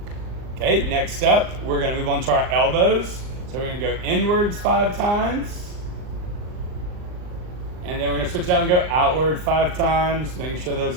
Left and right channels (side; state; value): left; late; 39 ms